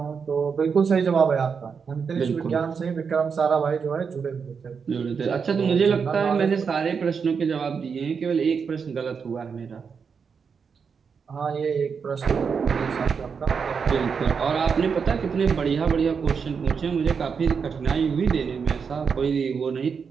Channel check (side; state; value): left; quieter; 6.0 dB